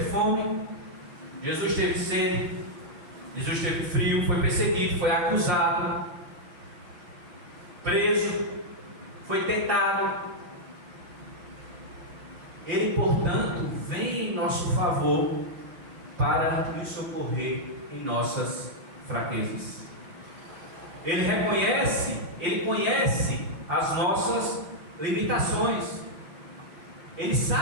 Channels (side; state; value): left; late; 6.1 ms